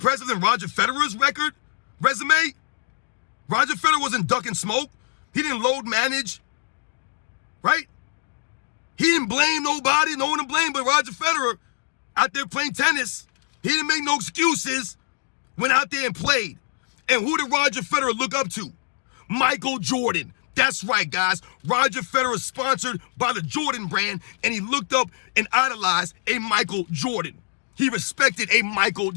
than Roger Federer's resume? Roger Federer wasn't ducking smoke. He didn't load manage, right? He didn't blame nobody, no one to blame but Roger Federer out there playing tennis. He didn't make no excuses, went out there and played. And who did Roger Federer look up to? Michael Jordan. That's right, guys. Roger Federer is sponsored by the Jordan brand, and he looked up and idolized a Michael Jordan. He respected a Michael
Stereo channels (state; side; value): silent; right; digital silence